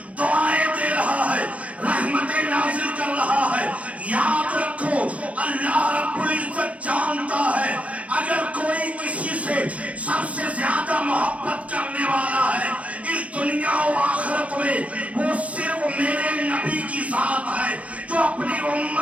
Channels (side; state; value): left; late; 0.065 ms